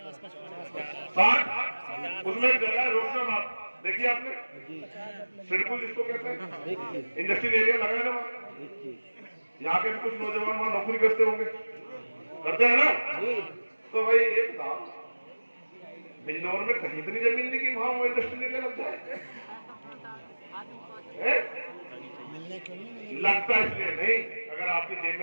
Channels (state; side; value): inverted; both; correlation -1.00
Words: 60। उसमें एक जगह है रोशनाबाद, देखिए आपने? सिडकुल जिसको कहते हैं, इंडस्ट्रियल एरिया लगा है ना वहां। यहाँ के भी कुछ नौजवान वहां नौकरी करते होंगे, करते हैं ना? तो भाई एक था बिजनौर में कहीं इतनी जमीन नहीं कि वहां वो इंडस्ट्रियल एरिया लग जाए। लगता इसलिए नहीं, अगर आपकी जेब